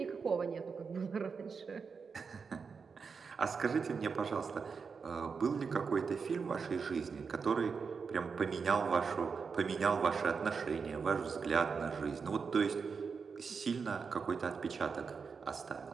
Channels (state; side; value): quieter; left; 5.5 dB